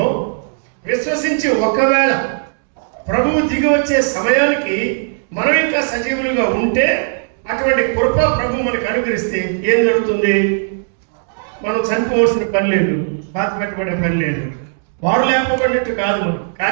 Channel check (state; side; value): silent; left; digital silence